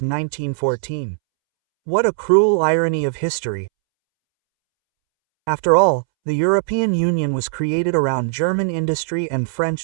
What a cruel irony of history. After all, the European Union was created around German industry and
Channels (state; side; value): silent; left; 66 dB below the other